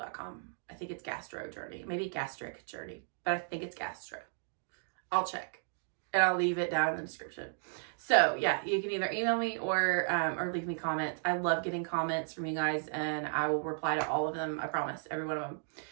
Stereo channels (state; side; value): silent; left; digital silence